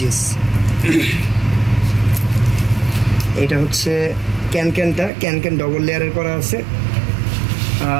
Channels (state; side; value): drops out; left; at 5.1 s